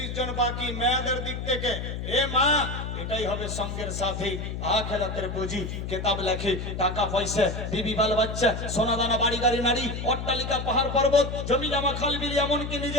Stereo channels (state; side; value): noise; left; hum, 5 dB below the sound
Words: জন বাকি। মেয়েদের দিক থেকে এ মা, এটাই হবে সঙ্গের সাথী, আখিরাতের পুঁজি। কিতাব লেখে, টাকা পয়সা, বিবি বাল বাচ্চা, সোনা দানা, বাড়ি গাড়ি নারী, অট্টালিকা, পাহাড় পর্বত, জমি জমা, খাল বিল, এমনকি